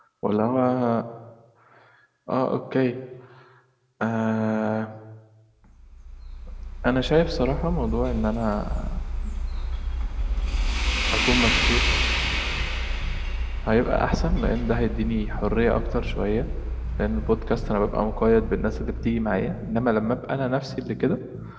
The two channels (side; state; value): both; identical; correlation 1.00